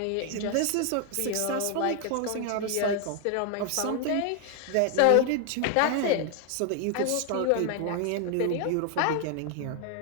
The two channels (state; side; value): different; both; correlation 0.00